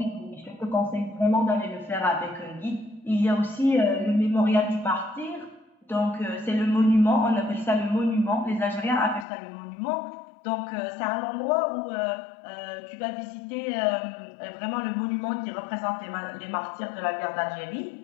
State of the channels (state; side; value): drops out; right; at 9.2 s